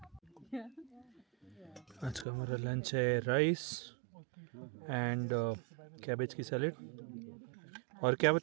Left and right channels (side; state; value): left; drops out; at 2.2 s